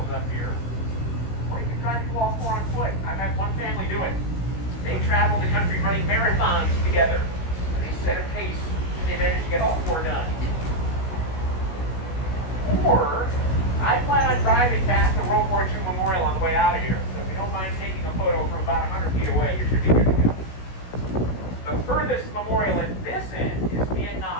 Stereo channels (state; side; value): late; right; 16 ms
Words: up here. Or you can try to do all four on foot. I've had one family do it. They travel the country running marathons together. And they set a pace and they managed to get all four done. Or, I plan on driving past the World War II Memorial on the way out of here. So if you don't mind taking a photo from about 100 feet away, you should be good to go. The furthest memorial at this end is